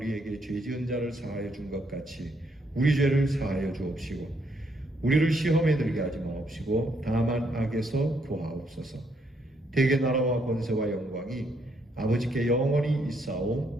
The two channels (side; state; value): both; normal; correlation 0.73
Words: 죄 지은 자를 사하여 준 것 같이 우리 죄를 사하여 주옵시고 우리를 시험에 들게 하지 마옵시고 다만 악에서 구하옵소서. 대개 나라와 권세와 영광이 아버지께 영원히